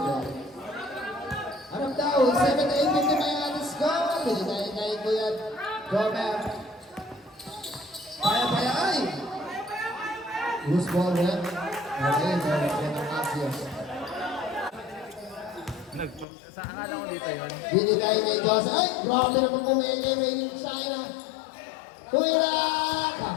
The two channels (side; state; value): right; drops out; at 16.2 s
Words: Anong daw? 78-50 pa yung ating score. Binigay kay Kuya Robert. Kaya ay! Who's ball red? Okay, Robert yan ang Axios. Sa akala ko dito yun. Binigay kay Joseph. Ay, grabe naman kumili yung China. Tuwira!